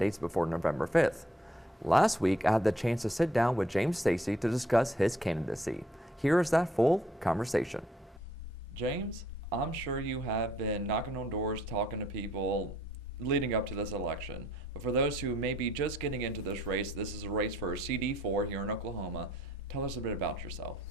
before November 5th. Last week, I had the chance to sit down with James Stacy to discuss his candidacy. Here is that full conversation. James, I'm sure you have been knocking on doors, talking to people leading up to this election. But for those who may be just getting into this race, this is a race for CD04 here in Oklahoma. Tell us a bit about yourself.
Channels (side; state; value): both; normal; correlation 0.65